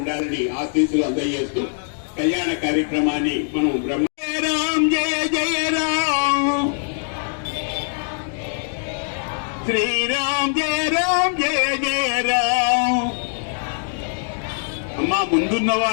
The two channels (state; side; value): silent; right; 60 dB below the other